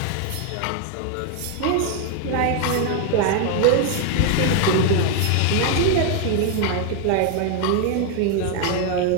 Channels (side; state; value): both; different; correlation 0.01